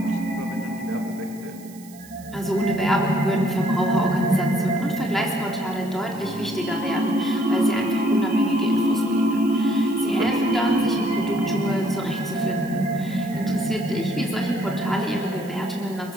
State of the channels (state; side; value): noise; right; hiss, 22 dB below the sound